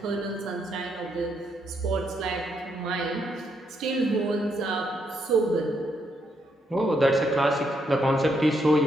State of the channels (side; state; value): both; normal; correlation 0.76